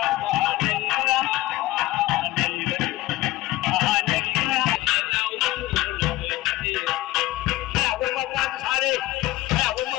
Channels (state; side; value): quieter; right; 17.6 dB